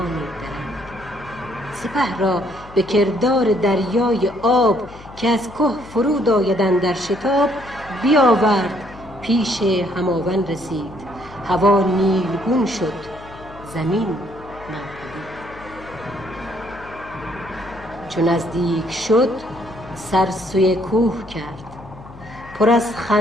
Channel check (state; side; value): noise; left; hum, 18 dB below the sound